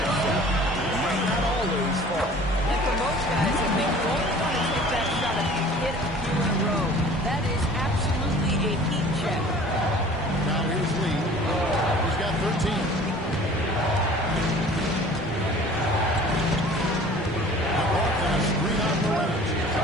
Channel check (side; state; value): both; normal; correlation 0.47